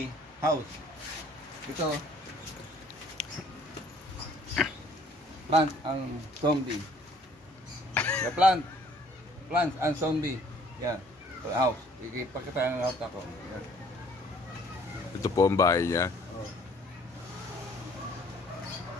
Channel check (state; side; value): normal; both; correlation 0.58